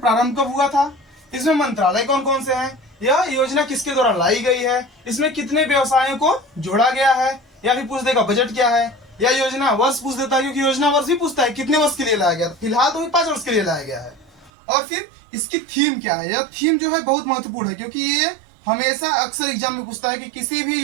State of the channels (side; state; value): left; drops out; at 14.5 s